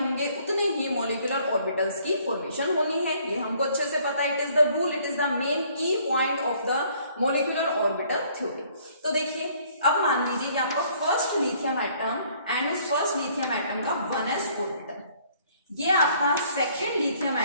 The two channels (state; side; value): inverted; both; correlation -0.61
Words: उतने ही मोलिकुलर ऑर्बिटल्स की फॉर्मेशन होनी है, ये हमको अच्छे से पता है। It is the rule, it is the main key point of the molecular orbital theory. तो देखिए, अब मान लीजिए कि आपका फर्स्ट लिथियम एटम एंड उस फर्स्ट लिथियम एटम का 1s ऑर्बिटल, ये आपका सेकेंड लिथियम